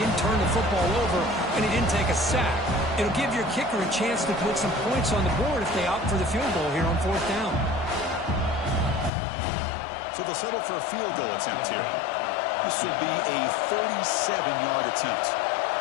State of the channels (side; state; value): right; drops out; at 9.1 s